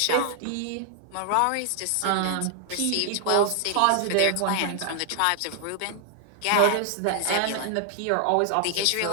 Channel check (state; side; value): different; both; correlation 0.00